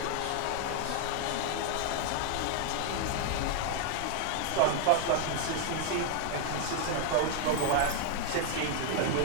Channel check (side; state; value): both; different; correlation 0.00